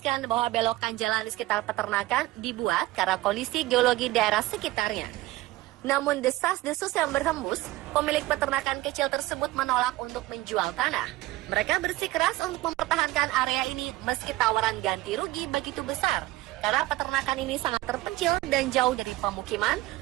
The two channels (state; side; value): quieter; left; 17.8 dB